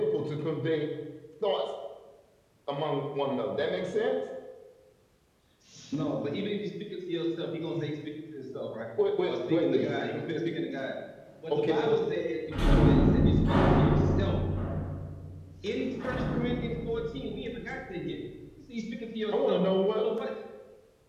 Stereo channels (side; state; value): both; identical; correlation 1.00